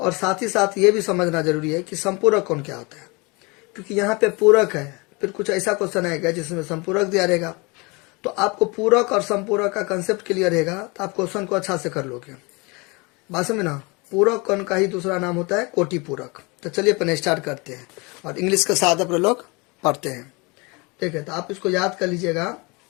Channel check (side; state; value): right; quieter; 27.5 dB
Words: साथ ही साथ ये भी समझना जरूरी है कि संपूरक कोण क्या होता है। क्योंकि यहाँ पे पूरक है, फिर कुछ ऐसा क्वेश्चन आएगा जिसमें संपूरक दिया रहेगा, तो आपको पूरक और संपूरक का कंसेप्ट क्लियर रहेगा तो आप क्वेश्चन को अच्छा से कर लोगे। बात समझ ना। पूरक कोण का ही दूसरा नाम होता है कोटि पूरक। तो चलिए अपन स्टार्ट करते हैं और इंग्लिश के साथ अपने लोग पढ़ते हैं। ठीक है, तो आप इसको याद कर लीजिएगा।